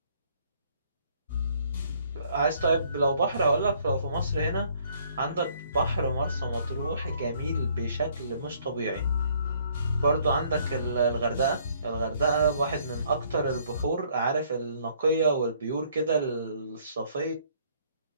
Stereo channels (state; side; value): inverted; both; correlation -0.63